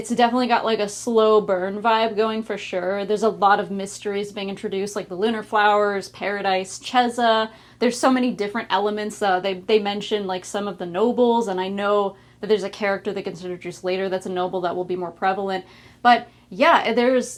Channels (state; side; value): identical; both; correlation 1.00